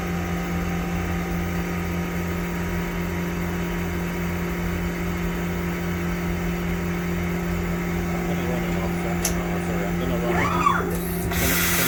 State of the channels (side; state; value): both; identical; correlation 1.00